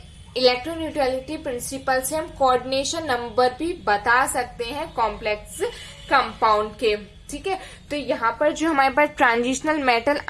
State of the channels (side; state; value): both; identical; correlation 1.00